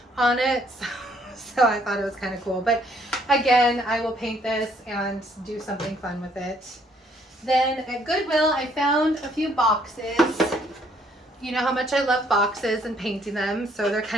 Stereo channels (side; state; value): both; normal; correlation 0.66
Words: on it. So I thought it was kind of cool. But again, I will paint this and do something fun with it. Then at Goodwill, I found a few boxes. You know how much I love boxes and painting them, so they're